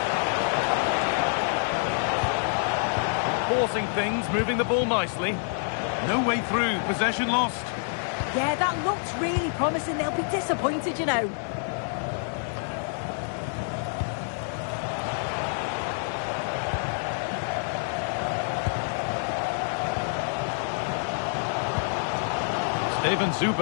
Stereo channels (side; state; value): right; silent; 60 dB below the other